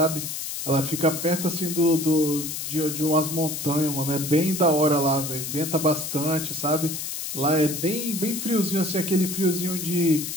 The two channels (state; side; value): noise; left; hiss, 5 dB below the sound